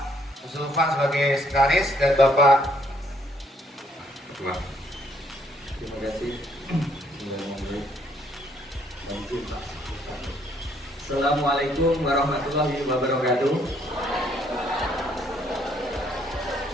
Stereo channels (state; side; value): normal; both; correlation 0.67